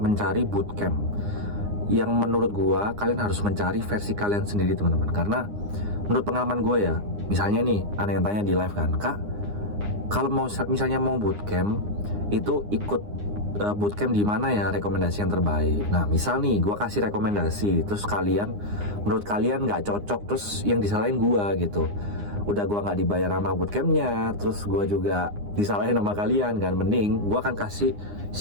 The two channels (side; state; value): left; late; 9.8 ms